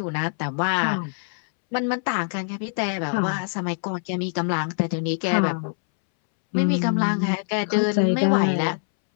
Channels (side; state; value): right; silent; 63 dB below the other